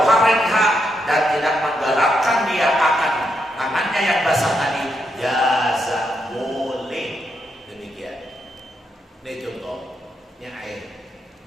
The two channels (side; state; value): both; normal; correlation 0.81